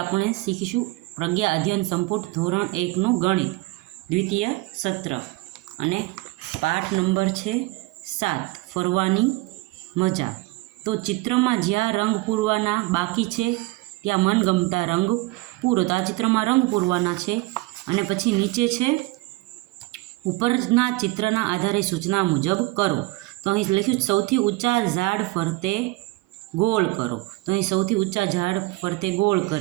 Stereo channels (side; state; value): left; quieter; 21.0 dB